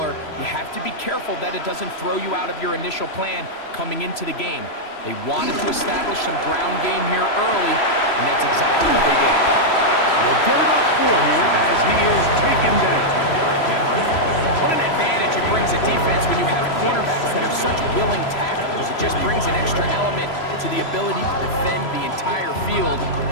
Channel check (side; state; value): right; late; 3.0 ms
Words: you have to be careful that it doesn't throw you out of your initial plan coming into the game. They wanted to establish some ground game here early, and that's exactly what they did. They'll get it up for here as he is taken down. What an advantage it brings a defense when you have cornerbacks that are such willing tacklers. It just brings an extra element to the ability to defend the entire field.